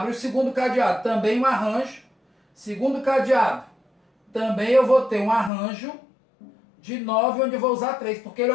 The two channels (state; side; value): drops out; right; at 5.5 s